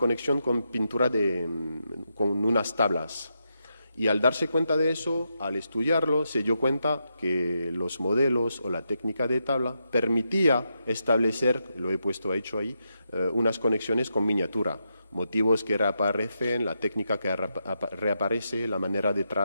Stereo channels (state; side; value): inverted; both; correlation -0.84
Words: con pintura con unas tablas. Y al darse cuenta de eso, al estudiarlo, se dio cuenta que los modelos o la técnica de tabla permitía establecer, lo he puesto hecho ahí, unas conexiones con miniatura. Motivos que reaparecen, la técnica que reaparece, la manera